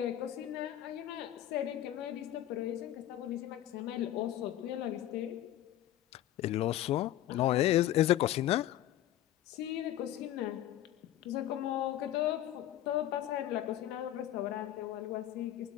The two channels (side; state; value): right; quieter; 13.0 dB